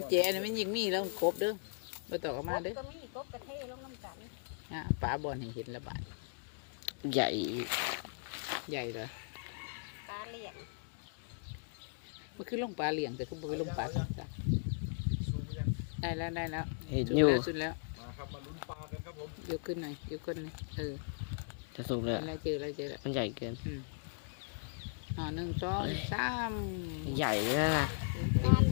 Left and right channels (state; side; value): silent; right; digital silence